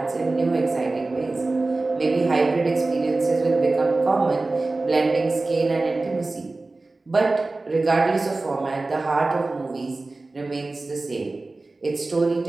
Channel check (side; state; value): left; quieter; 3.3 dB